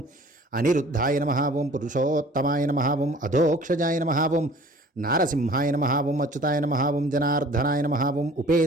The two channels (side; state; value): both; normal; correlation 0.49